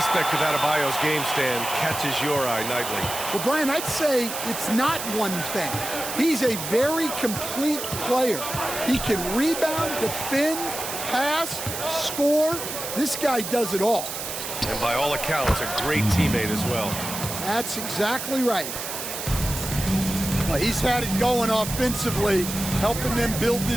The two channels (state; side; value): noise; right; hiss, 6 dB below the sound